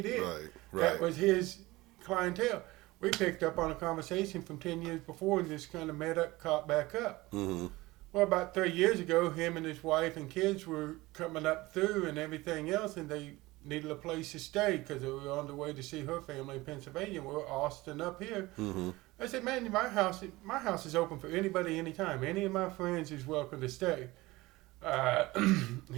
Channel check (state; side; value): quieter; left; 20.2 dB